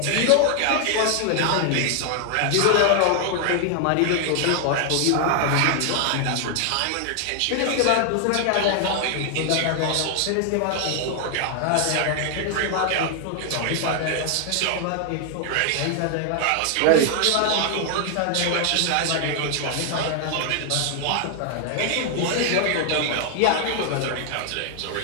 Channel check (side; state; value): both; different; correlation 0.00